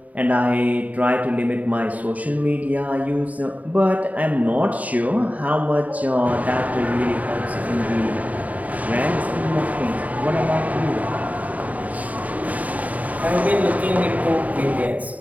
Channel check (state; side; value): late; left; 0.072 ms